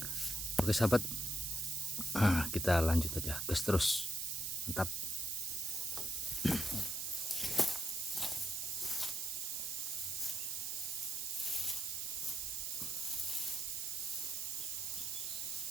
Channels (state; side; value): noise; right; hiss, 2 dB below the sound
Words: Oke sahabat, kita lanjut aja, gas terus, mantap.